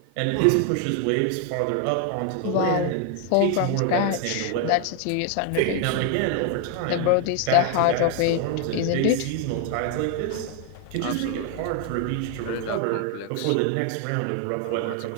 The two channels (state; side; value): different; both; correlation 0.00